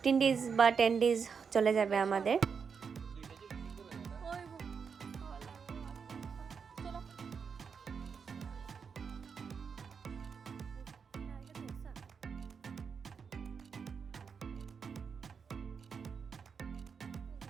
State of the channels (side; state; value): left; quieter; 6.0 dB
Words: days বা 10 days চলে যাবে আমাদের।